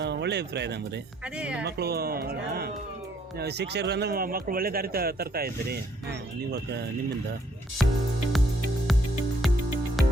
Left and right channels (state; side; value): normal; both; correlation 0.67